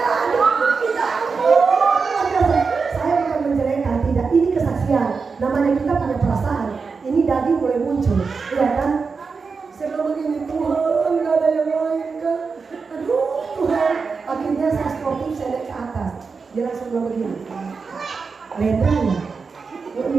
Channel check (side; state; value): left; quieter; 4.9 dB